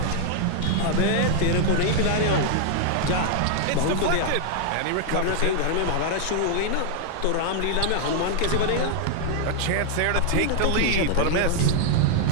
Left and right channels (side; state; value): both; different; correlation 0.00